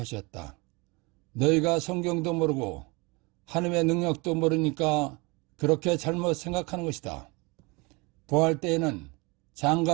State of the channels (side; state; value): left; quieter; 27.0 dB